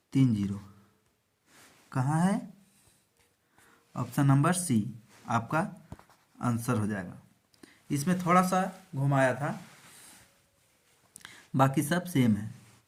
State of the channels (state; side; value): identical; both; correlation 1.00